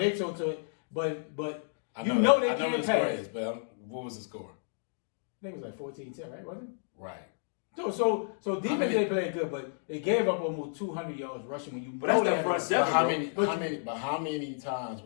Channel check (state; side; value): silent; right; digital silence